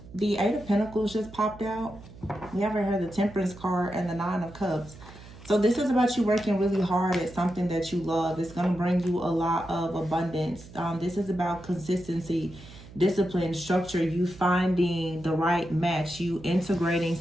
The Eight of Pentacles just popped out. We haven't heard the Temperance card and the Nine of Cups. So this is about you working really hard at something that you love. It's going to bring you a lot of abundance. This is about consistency, discipline, structure, you finding the right match, you integrating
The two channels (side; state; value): right; noise; hum, 18 dB below the sound